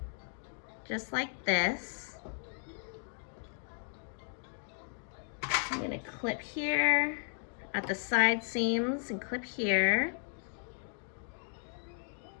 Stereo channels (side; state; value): right; silent; 54 dB below the other